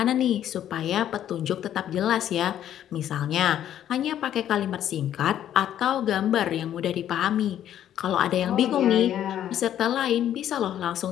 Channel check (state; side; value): quieter; right; 10.9 dB